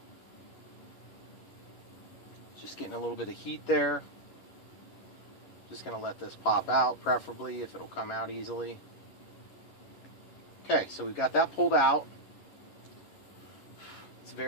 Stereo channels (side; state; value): right; late; 11 ms